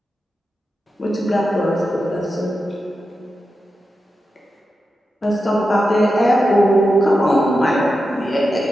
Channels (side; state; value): both; normal; correlation 0.90